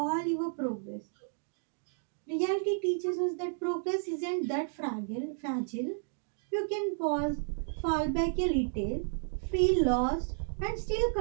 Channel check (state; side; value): silent; left; digital silence